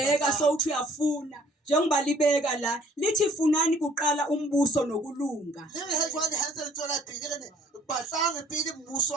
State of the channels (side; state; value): both; normal; correlation 0.57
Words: sowuthi uyafuna njengoba libeka la lithi funani kuqala umbuso nokulunga Le re he jwale ha ntse le tswela pele re ne batlange pele mmuso